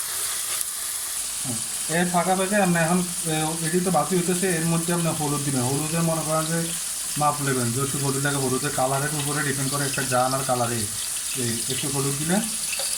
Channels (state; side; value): identical; both; correlation 1.00